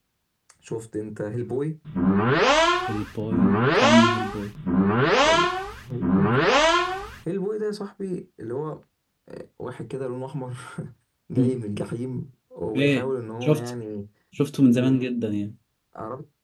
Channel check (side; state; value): both; identical; correlation 1.00